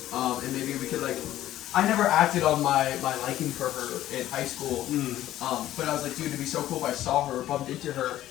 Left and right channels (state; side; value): quieter; right; 13.6 dB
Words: and maybe we could like. I never acted on my liking for her in high school, but I was like, dude, it'd be so cool if I saw her, bumped into her,